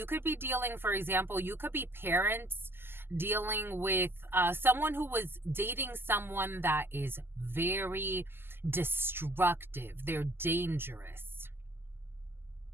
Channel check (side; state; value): left; late; 0.11 ms